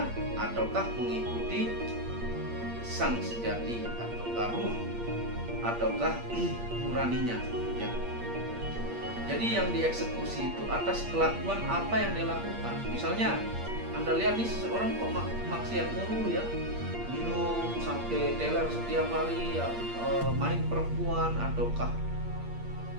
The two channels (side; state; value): left; late; 8.5 ms